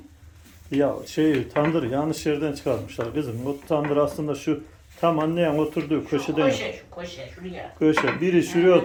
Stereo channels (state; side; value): identical; both; correlation 1.00